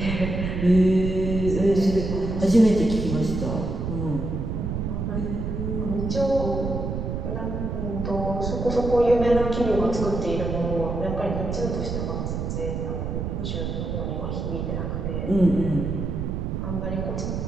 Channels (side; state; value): right; noise; rumble, 3 dB below the sound